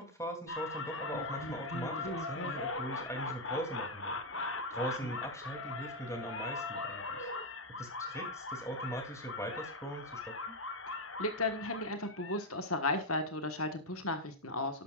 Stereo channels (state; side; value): normal; both; correlation 0.03